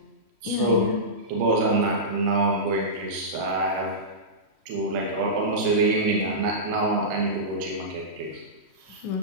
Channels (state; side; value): late; left; 3.1 ms